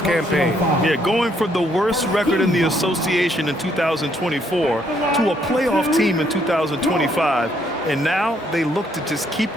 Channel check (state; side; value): normal; both; correlation 0.70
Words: Yeah, going from the worst record in the association in 2024 to a playoff team in 2025. And now they look to just keep